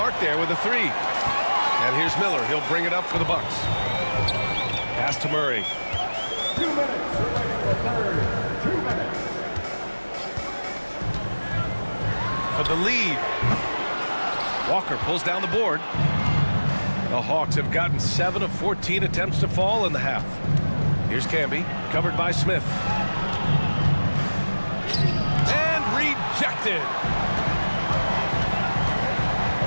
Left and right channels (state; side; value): inverted; both; correlation -1.00